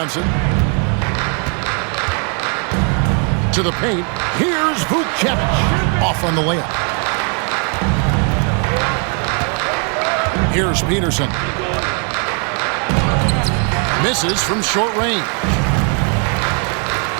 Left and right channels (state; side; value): quieter; left; 39.9 dB